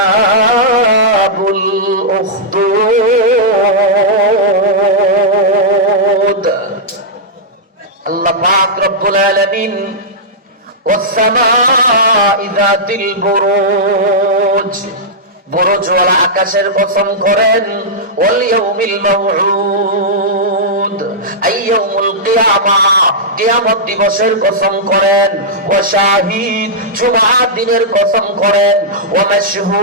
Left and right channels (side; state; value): both; normal; correlation -0.10